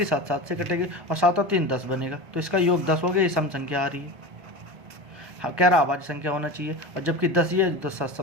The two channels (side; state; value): left; late; 1.2 ms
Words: 7 7 से कटेगी, और 7 और 3 10 बनेगा, तो इसका योग 10 हो गया। ये सम संख्या आ रही है। हाँ, कह रहा अभाज्य संख्या होना चाहिए, और जबकि 10 ये तो